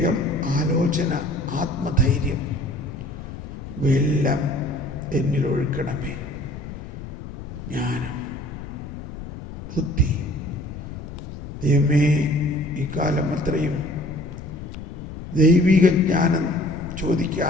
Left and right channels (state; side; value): noise; left; rumble, 11 dB below the sound